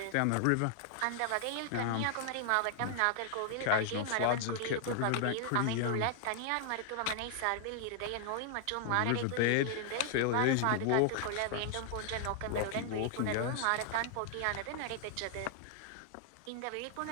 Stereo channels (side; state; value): both; different; correlation 0.00